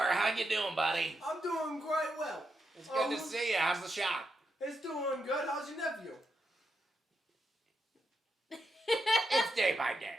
how you doing, buddy? I'm doing quite well. It's good to see you. How's the shop? It's doing good. How's your nephew? It's day by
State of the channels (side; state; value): both; normal; correlation 0.84